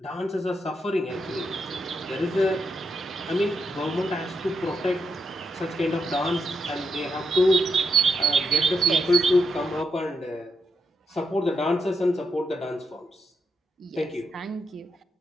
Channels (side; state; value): both; normal; correlation 0.81